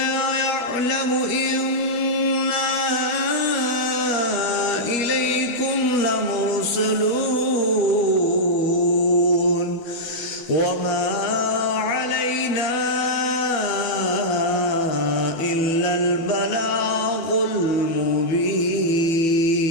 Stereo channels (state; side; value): late; right; 12 ms